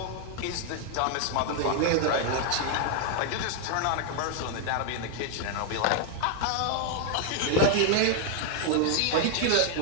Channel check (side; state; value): both; different; correlation 0.00